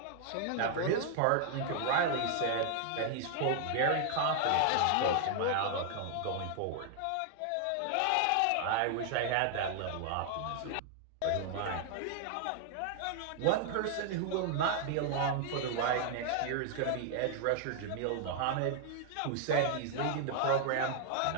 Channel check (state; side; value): different; both; correlation 0.00